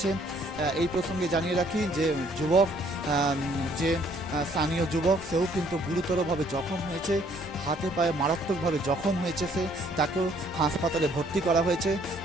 এই প্রসঙ্গে জানিয়ে রাখি যে যে স্থানীয় যুবক, সেও কিন্তু গুরুতরভাবে জখম হয়েছে, হাতে পায়ে মারাত্মকভাবে জখম হয়েছে তাকেও হাসপাতালে ভর্তি করা হয়েছে।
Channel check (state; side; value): normal; both; correlation 0.63